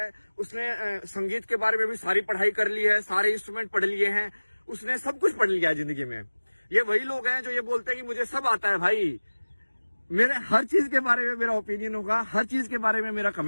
उसने संगीत के बारे में भी सारी पढ़ाई कर ली है, सारे इंस्ट्रूमेंट पढ़ लिए हैं, उसने सब कुछ पढ़ लिया है जिंदगी में। ये वही लोग हैं जो ये बोलते हैं कि मुझे सब आता है। भाई मेरे हर चीज के बारे में मेरा ओपिनियन होगा, हर चीज के बारे में मेरा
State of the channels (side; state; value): both; inverted; correlation -1.00